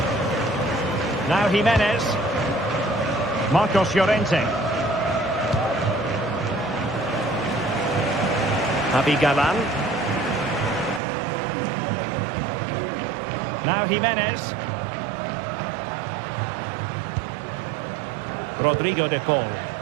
Now Jimenez. Marcos Llorente. Javi Galán. Now Jimenez. Rodrigo De Paul.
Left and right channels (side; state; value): left; drops out; at 11.0 s